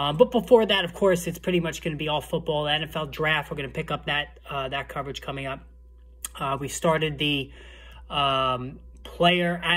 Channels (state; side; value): identical; both; correlation 1.00